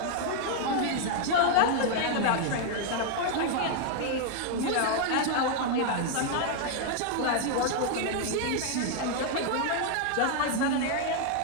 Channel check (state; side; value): different; both; correlation 0.00